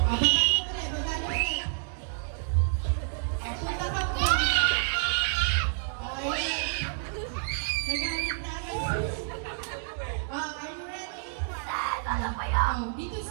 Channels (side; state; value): left; silent; digital silence